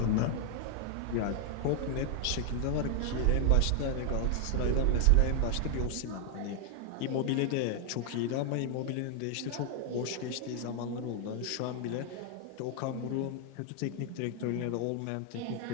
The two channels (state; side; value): different; both; correlation 0.00